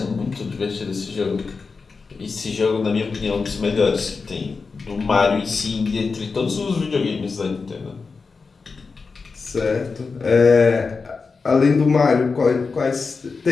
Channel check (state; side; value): quieter; right; 4.6 dB